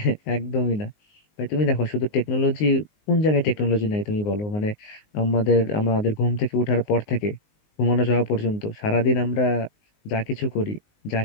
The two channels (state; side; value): late; right; 19 ms